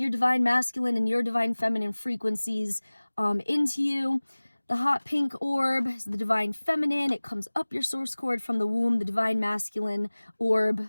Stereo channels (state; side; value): inverted; both; correlation -1.00